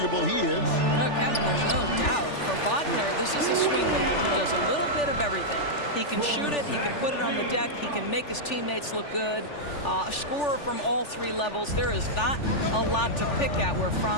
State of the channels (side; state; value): right; late; 3.4 ms